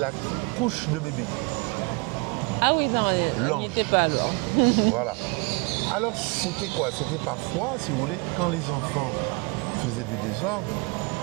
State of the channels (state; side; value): quieter; left; 29.6 dB